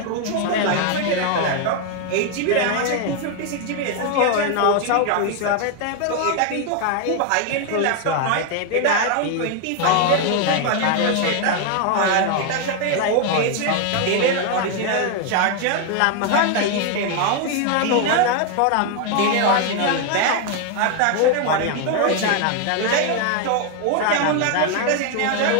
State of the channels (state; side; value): different; both; correlation 0.01